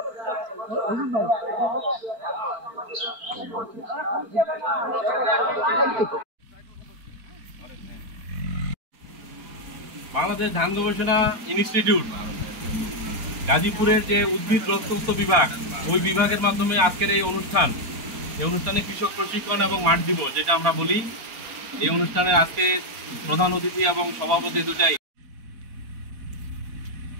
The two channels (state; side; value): late; left; 4.5 ms